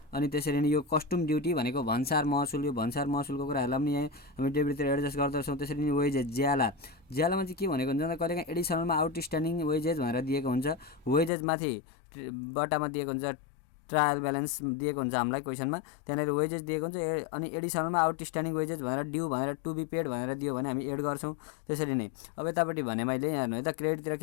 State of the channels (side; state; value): right; drops out; at 11.3 s